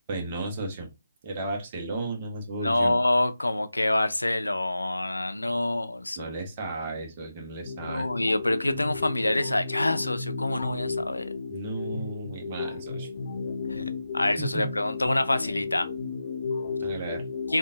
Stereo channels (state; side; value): inverted; both; correlation -0.91